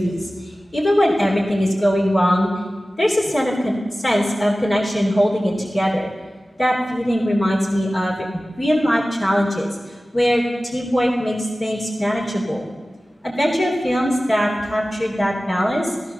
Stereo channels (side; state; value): both; normal; correlation 0.96